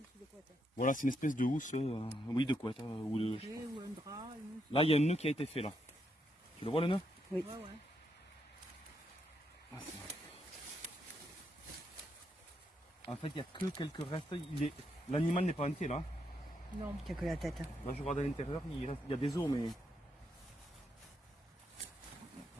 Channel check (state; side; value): normal; both; correlation 0.79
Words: de couette. Voilà, c'est une espèce de housse, oui, de couette. Ou de... Ou un drap, une housse. Là, il y a un nœud qui a été fait là. Tu le vois le nœud? Oui. Ouais, ouais. Ah, en fait, il n'y a que quelques restes. L'animal n'est pas entier là. Non, il n'y a que la tête. Là, je regarde à l'intérieur, il y a des os, mais.